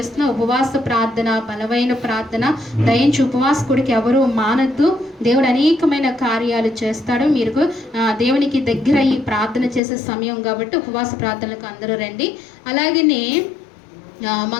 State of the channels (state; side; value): drops out; right; at 9.8 s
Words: ఉపవాస ప్రార్థన, బలమైన ప్రార్థన. దయించి ఉపవాస కూడిక ఎవరు మానద్దు. దేవుడు అనేకమైన కార్యాలు చేస్తాడు. మీరు దేవునికి దగ్గర ఈ ప్రార్థన చేసే సమయం కాబట్టి ఉపవాస ప్రార్థనలకు అందరూ రండి. అలాగనే